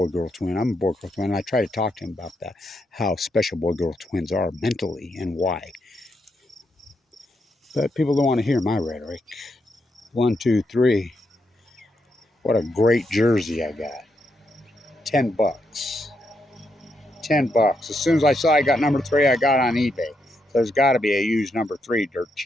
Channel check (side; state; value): both; normal; correlation 0.80